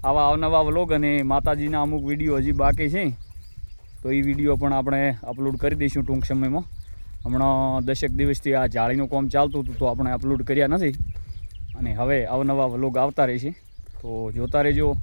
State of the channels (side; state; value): both; inverted; correlation -1.00